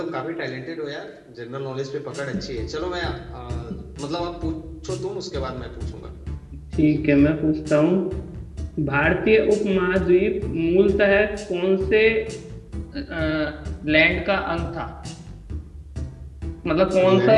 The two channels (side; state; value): both; identical; correlation 1.00